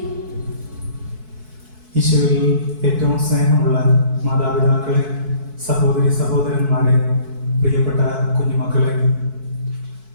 ഈശോയിൽ ഏറ്റവും സ്നേഹമുള്ള മാതാപിതാക്കളെ, സഹോദരി സഹോദരന്മാരെ, പ്രിയപ്പെട്ട കുഞ്ഞുമക്കളെ,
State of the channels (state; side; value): late; left; 4.6 ms